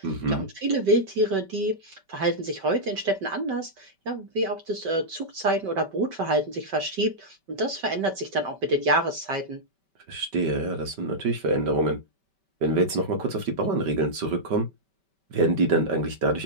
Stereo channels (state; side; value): late; left; 5.2 ms